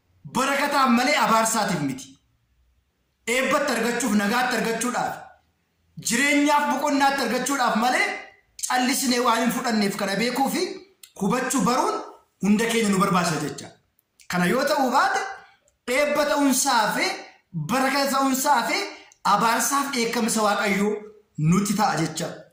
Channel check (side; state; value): both; identical; correlation 1.00